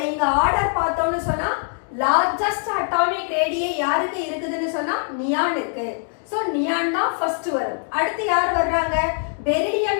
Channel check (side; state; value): right; silent; 59 dB below the other